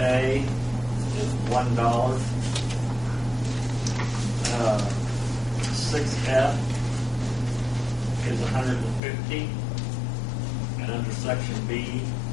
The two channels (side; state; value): right; drops out; at 9.0 s